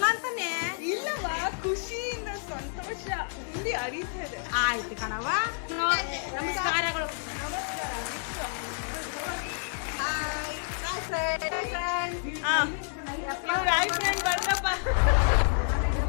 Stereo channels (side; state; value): right; silent; 58 dB below the other